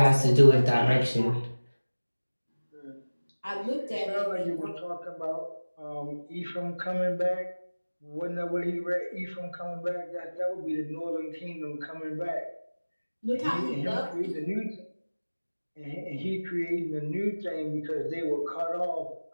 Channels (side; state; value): both; inverted; correlation -1.00